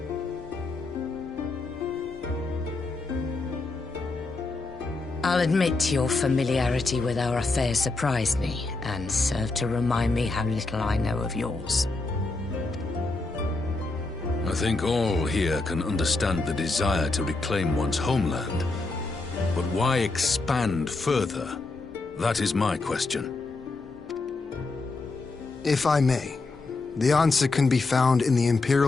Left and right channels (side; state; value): right; quieter; 3.4 dB